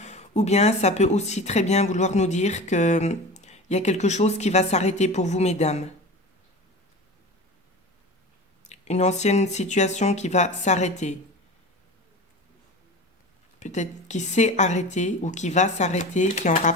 Ou bien ça peut aussi très bien vouloir nous dire qu'il y a quelque chose qui va s'arrêter pour vous, mesdames. Une ancienne situation qui va s'arrêter. Peut-être qui s'est arrêté ou qui va s'arrêter, qui est en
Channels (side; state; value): both; normal; correlation 0.33